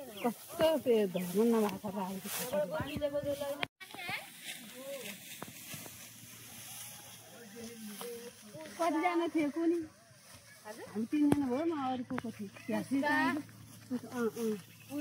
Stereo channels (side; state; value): both; identical; correlation 1.00